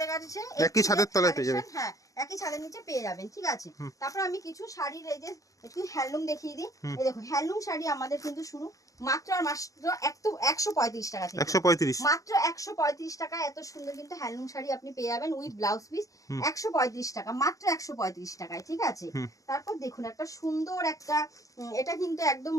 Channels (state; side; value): late; right; 0.16 ms